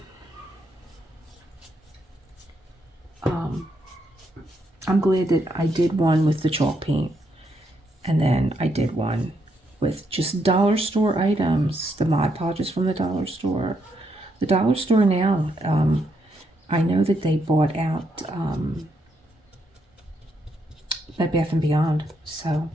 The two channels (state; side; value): normal; both; correlation 0.77